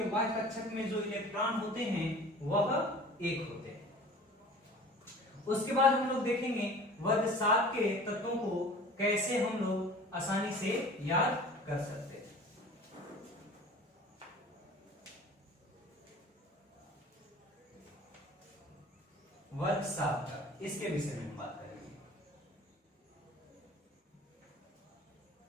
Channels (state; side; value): normal; both; correlation 0.43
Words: वाय कक्षक में जो इलेक्ट्रॉन होते हैं वह 1 होते हैं। उसके बाद हम लोग देखेंगे वर्ग 7 के तत्वों को कैसे हम लोग आसानी से याद कर सकते हैं। वर्ग 7 का, इसके विषय में हम बात करेंगे।